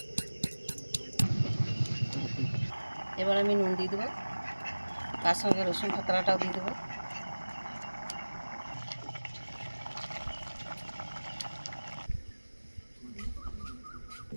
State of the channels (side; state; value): both; inverted; correlation -1.00